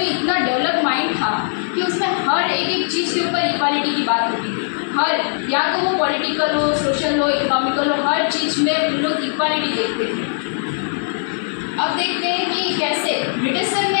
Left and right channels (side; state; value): right; silent; digital silence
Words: इतना डेवलप माइंड था कि उसमें हर एक चीज़ के ऊपर इक्वालिटी की बात होती थी। हर, या तो वो पॉलिटिकल हो, सोशल हो, इकोनॉमिकल हो, हर चीज़ में उन लोग इक्वालिटी देखते थे। अब देखते हैं कि कैसे ब्रिटिशर